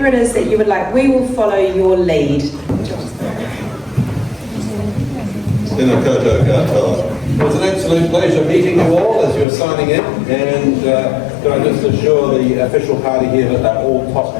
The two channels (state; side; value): drops out; right; at 9.5 s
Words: it is that you would like, we will follow your lead. Tēnā koutou katoa. It was an absolute pleasure meeting you all as you were signing in, and can I just assure the official party here that they're all